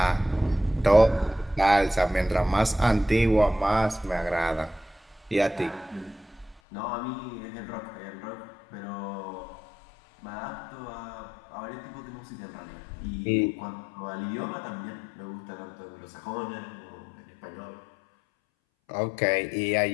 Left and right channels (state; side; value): drops out; right; at 6.6 s